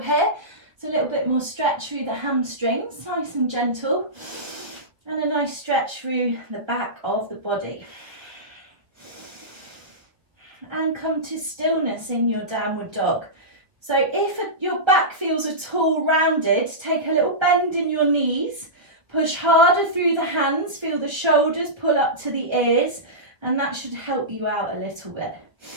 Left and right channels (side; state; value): left; late; 1.1 ms